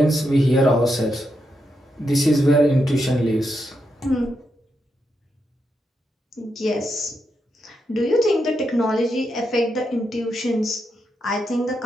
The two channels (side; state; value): both; normal; correlation 0.83